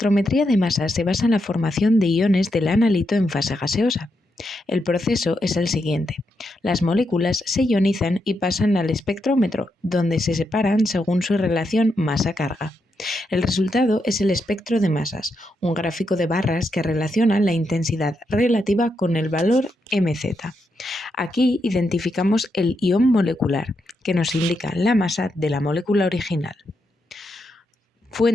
de masas se basa en la formación de iones del analito en fase gaseosa. El proceso es el siguiente. Las moléculas se ionizan y pasan al espectrómetro, donde se separan según su relación masa-carga. El resultado es el espectro de masas, un gráfico de barras que relaciona la intensidad relativa con el valor mz. Aquí identificamos el ion molecular, que nos indica la masa de la molécula original.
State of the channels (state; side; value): normal; both; correlation 0.83